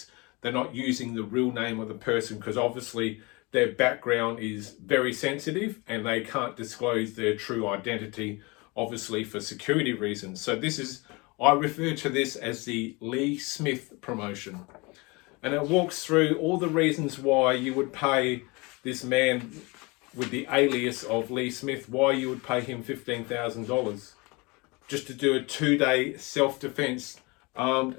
they're not using the real name of the person, because obviously their background is very sensitive and they can't disclose their true identity obviously for security reasons. So I refer to this as the Lee Smith promotion. And it walks through all the reasons why you would pay this man with the alias of Lee Smith, why you would pay him $15,000 just to do a 2-day self-defense, armed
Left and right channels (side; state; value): right; quieter; 26.3 dB